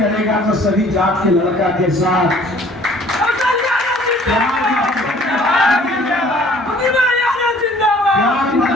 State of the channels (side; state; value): both; normal; correlation 0.54